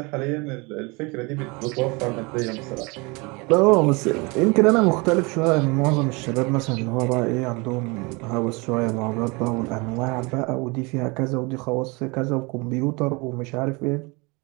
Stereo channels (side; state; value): left; quieter; 27.5 dB